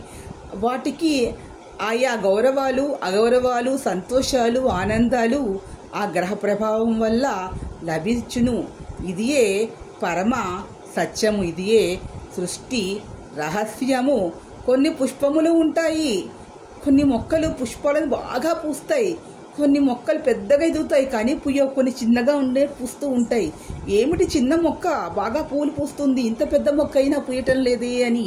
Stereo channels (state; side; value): identical; both; correlation 1.00